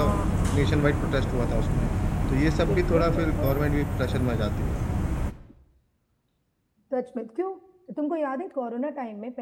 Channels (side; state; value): both; identical; correlation 1.00